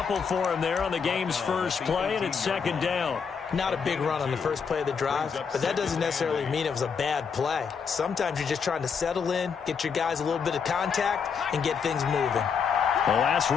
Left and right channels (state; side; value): quieter; right; 6.2 dB